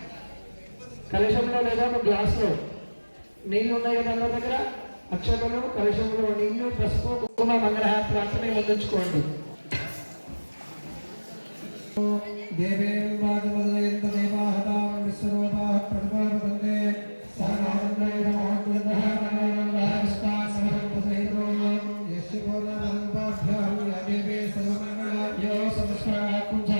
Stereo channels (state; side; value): inverted; both; correlation -1.00